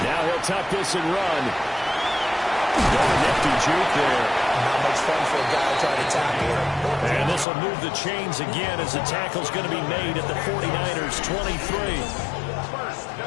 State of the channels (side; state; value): right; drops out; at 7.5 s